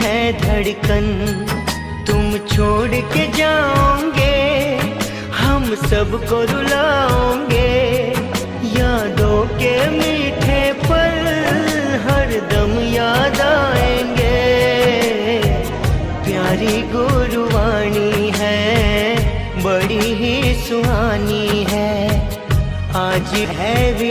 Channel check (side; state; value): both; identical; correlation 1.00